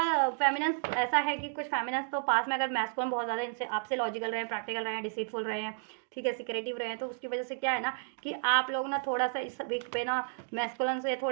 फेमिनिन्स ऐसा है कि कुछ फेमिनिन्स तो पास में अगर मैस्कुलिन बहुत ज़्यादा इनसे आपसे लॉजिकल रहे हैं, प्रैक्टिकल रहे हैं, डिसीटफुल रहे हैं, ठीक है, सिक्रेटिव रहे हैं, तो उसकी वजह से क्या है ना कि आप लोग ना थोड़ा सा इस वीक पे ना मैस्कुलिन से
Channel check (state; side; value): silent; left; digital silence